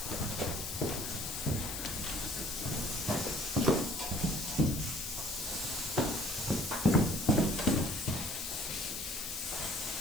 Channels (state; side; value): noise; left; hiss, 5 dB below the sound